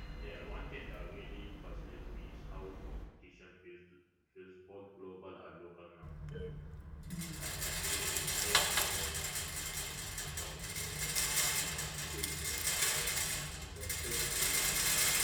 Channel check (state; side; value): identical; both; correlation 1.00